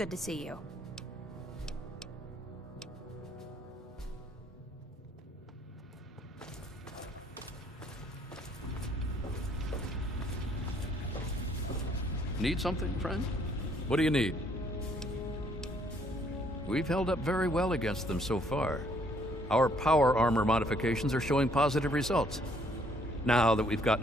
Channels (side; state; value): both; normal; correlation 0.65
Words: to see you. Need something, friend? What do you need? We've held up very well against them so far. Our power armor modifications are showing positive results. Now that we've